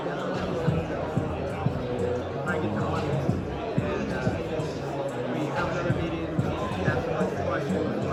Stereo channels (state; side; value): identical; both; correlation 1.00